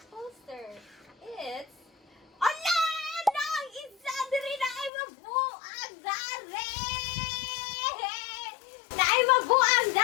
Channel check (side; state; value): right; drops out; at 4.9 s